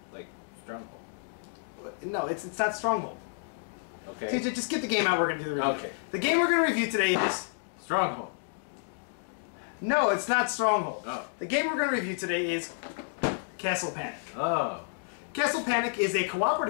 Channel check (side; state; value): right; silent; digital silence